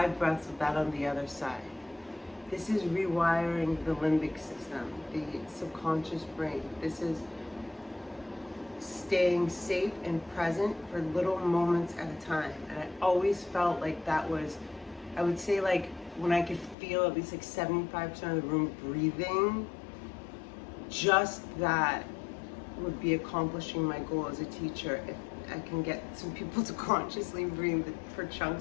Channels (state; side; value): drops out; right; at 16.8 s